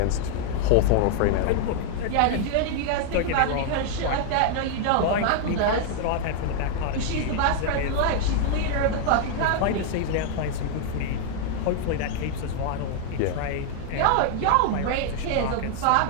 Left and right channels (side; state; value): both; different; correlation 0.00